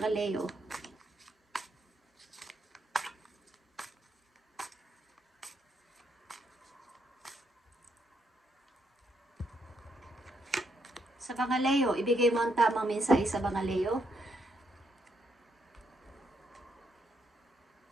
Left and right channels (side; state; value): both; normal; correlation 0.77